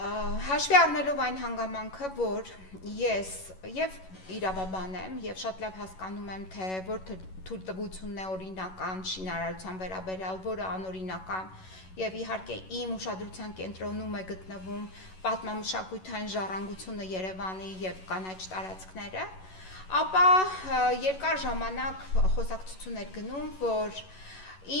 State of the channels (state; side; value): late; right; 11 ms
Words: Հաշվի առնելով այն հանգամանքը, որ ես եւ իրավաբան եմ եւ շատ լավ հասկանում եմ, թե որ թույլտվությունն է օրինական շինարարության վերաբերյալ, որը անօրինական եւ իհարկե իմ ուշադրության կենտրոնում է գտնվում պատմամշակութային ժառանգությունը Երևանի եւ կանաչ տարածքները, ապա երկար ժամանակ խոսակցություն էր գնում, որ